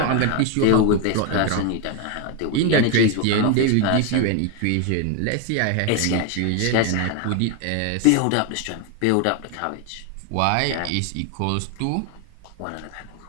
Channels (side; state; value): both; different; correlation 0.01